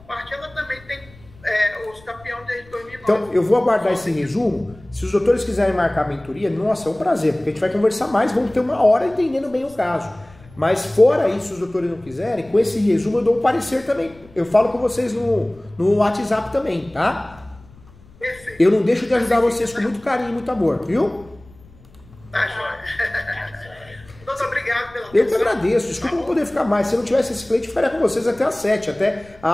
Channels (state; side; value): noise; left; rumble, 24 dB below the sound